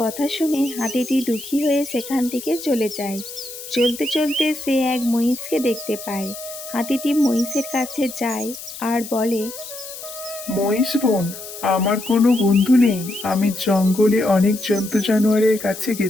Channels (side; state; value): left; noise; hiss, 12 dB below the sound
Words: কথা শুনে হাতিটি দুঃখী হয়ে সেখান থেকে চলে যায়। চলতে চলতে সে এক মহিষকে দেখতে পায়। হাতিটি মহিষের কাছে যায় আর বলে, মহিষ বোন, আমার কোনো বন্ধু নেই। আমি জঙ্গলে অনেক জন্তু জানোয়ারের কাছে